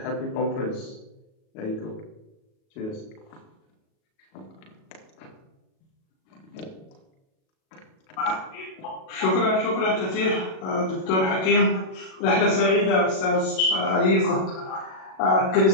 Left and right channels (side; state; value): right; late; 37 ms